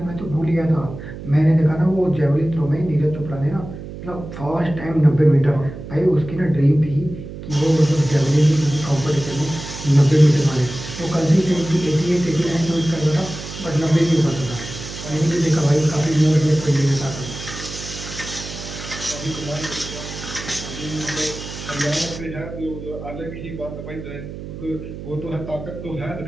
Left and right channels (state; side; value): noise; right; hum, 11 dB below the sound